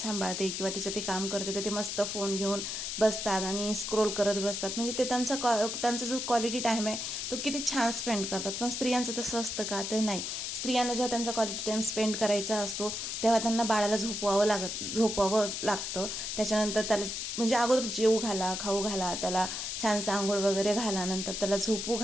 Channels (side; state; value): left; noise; hiss, 4 dB below the sound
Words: किंवा तिचं ते काम करते तर ते मस्त फोन घेऊन बसतात आणि स्क्रोल करत बसतात. म्हणजे ते त्यांचा जो क्वालिटी टाईम आहे तो किती छान स्पेंड करतात. पण स्त्रियांचं तसं असतं का? तर नाही. स्त्रियांना जेव्हा त्यांचा क्वालिटी टाईम स्पेंड करायचा असतो तेव्हा त्यांना बाळाला झोपवावं लागतं. त्याच्यानंतर त्याला म्हणजे अगोदर जेवू घाला, खाऊ घाला, त्याला छानसं आंघोळ वगैरे घाला, नंतर त्याला झोपू